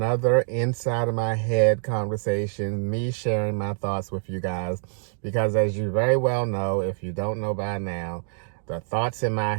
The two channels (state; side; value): silent; left; digital silence